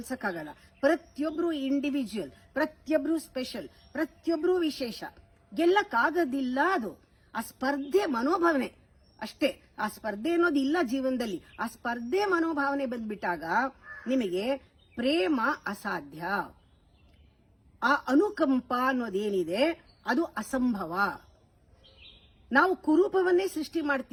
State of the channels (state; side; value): identical; both; correlation 1.00